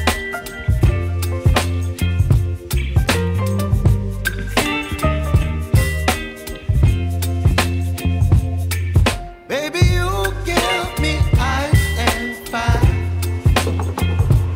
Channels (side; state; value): both; identical; correlation 1.00